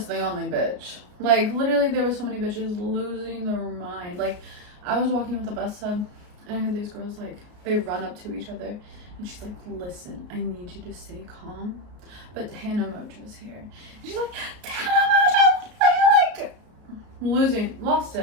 the only bitch. Like, literally, there were so many bitches losing their mind. Like, I was walking with the bus hub, and I had these girls, like, they run up to each other, and she's like, listen, I need you to stay calm, but Tana Mongeau's here. And she's like, Tana Mongeau! Like, lost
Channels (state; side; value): late; left; 33 ms